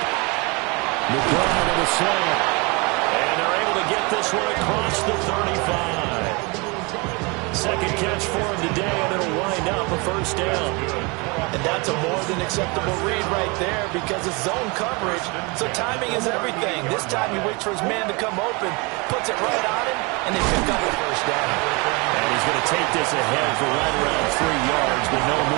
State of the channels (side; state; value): left; quieter; 28.5 dB